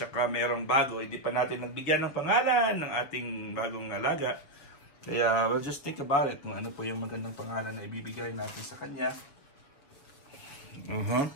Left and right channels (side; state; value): right; late; 6.7 ms